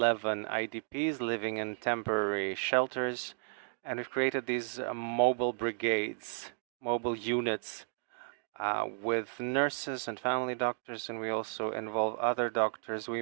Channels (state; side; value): silent; left; digital silence